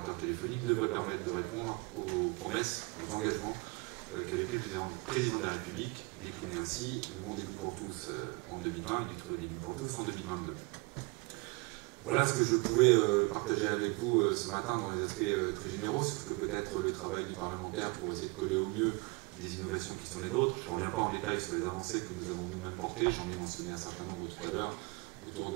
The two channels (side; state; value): left; quieter; 27.2 dB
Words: téléphoniques devrait permettre de répondre aux promesses, aux engagements qu'avait pris le président de la République, décliné ainsi le bon début pour tous en 2020 et le très début pour tous en 2022. Voilà ce que je pouvais partager avec vous ce matin dans les aspects très généraux sur ce que peut être le travail du parlementaire pour essayer de coller au mieux des innovations qui sont les nôtres. Je ne reviens pas en détail sur les avancées que nous avons nous-mêmes portées, j'en ai mentionné un certain nombre tout à l'heure autour